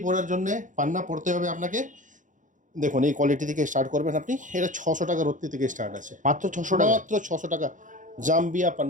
পড়ার জন্যে পান্না পড়তে হবে আপনাকে। দেখুন এই কোয়ালিটি থেকে স্টার্ট করবেন আপনি। এটা 600 টাকা রত্তি থেকে স্টার্ট আছে, মাত্র 600 টাকা, মাত্র 600 টাকা। জাম্বিয়া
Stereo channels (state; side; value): late; left; 0.37 ms